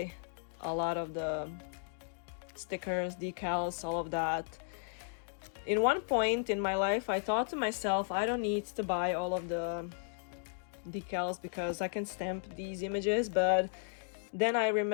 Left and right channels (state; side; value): silent; right; digital silence